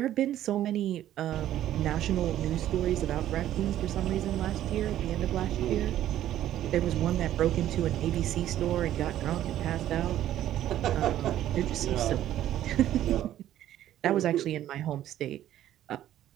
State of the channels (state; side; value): quieter; left; 12.4 dB